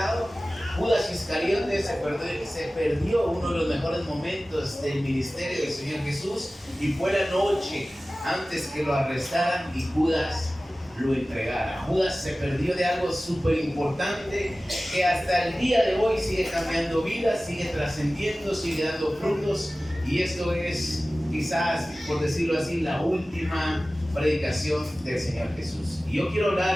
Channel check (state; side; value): normal; both; correlation 0.97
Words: Judas Iscariote se perdió uno de los mejores momentos del ministerio del Señor Jesús, y fue la noche antes que lo arrestaran y Judas lo entregara. Judas se perdió de algo súper importante que hasta el día de hoy sigue cambiando vidas, sigue trascendiendo, sigue dando frutos, y esto es quizás, por decirlo así, la última predicación del Señor Jesús. Y yo quiero